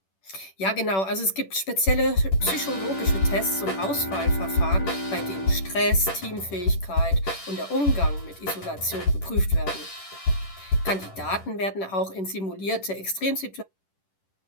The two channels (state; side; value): late; right; 10 ms